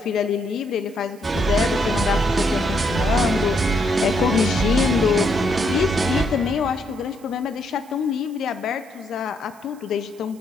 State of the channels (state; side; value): noise; right; hiss, 27 dB below the sound